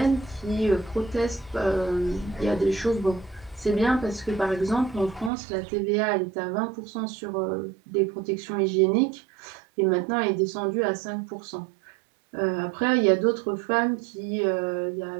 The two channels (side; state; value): left; drops out; at 5.3 s